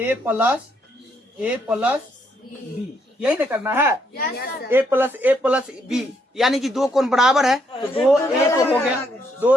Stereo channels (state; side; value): normal; both; correlation 0.73